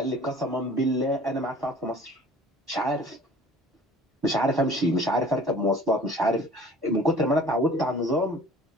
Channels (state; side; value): normal; both; correlation 0.48